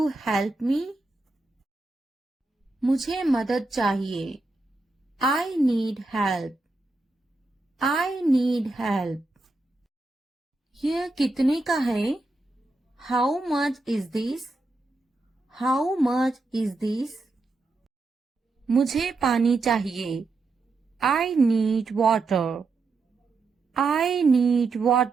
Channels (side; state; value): left; quieter; 3.4 dB